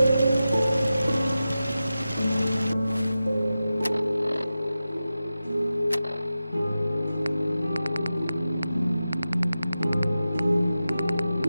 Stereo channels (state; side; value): inverted; both; correlation -0.93